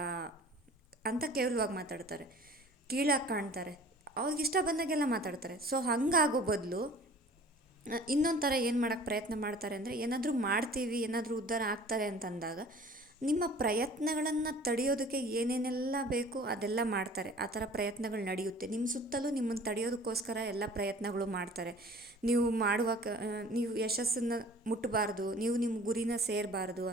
ಅಂತ ಕೇವಲವಾಗಿ ಮಾತಾಡ್ತಾರೆ, ಕೀಳಾಗಿ ಕಾಣ್ತಾರೆ, ಅವ್ರಿಗೆ ಇಷ್ಟ ಬಂದಾಗೆಲ್ಲ ಮಾತಾಡ್ತಾರೆ. ಸೊ ಹಂಗಾಗೋ ಬದಲು ಇನ್ನೊಂದು ಥರ ಏನು ಮಾಡೋಕ್ಕೆ ಪ್ರಯತ್ನ ಮಾಡ್ತಾರೆ ಅಂದರೆ, ಏನಾದರೂ ಮಾಡ್ತೀವಿ, ಏನಾದರೂ ಉದ್ಧಾರ ಆಗ್ತಾರೆ ಅಂತಂದಾಗ ನಿಮ್ಮ ಪ್ರಯತ್ನಗಳನ್ನು ತಡೆಯೋದಕ್ಕೆ ಏನೇನೆಲ್ಲ ಬೇಕು ಅದೆಲ್ಲ ಮಾಡ್ತಾರೆ. ಆ ಥರ ಪ್ರಯತ್ನಗಳು ನಡೆಯುತ್ತೆ. ನಿಮ್ಮ ಸುತ್ತಲೂ ನಿಮ್ಮನ್ನು ತಡೆಯೋದಕ್ಕೋಸ್ಕರ ಎಲ್ಲ ಪ್ರಯತ್ನಗಳು ಮಾಡ್ತಾರೆ. ನೀವು ಯಶಸ್ಸನ್ನು ಮುಟ್ಟಬಾರ್ದು, ನೀವು ನಿಮ್ಮ ಗುರಿನ ಸೇರಬಾರ್ದು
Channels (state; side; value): normal; both; correlation 0.47